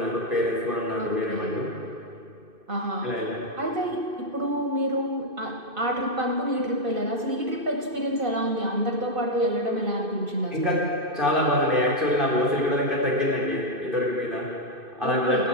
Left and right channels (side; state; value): left; late; 2.5 ms